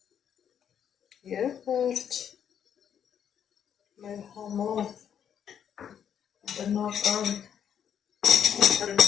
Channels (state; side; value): quieter; right; 8.7 dB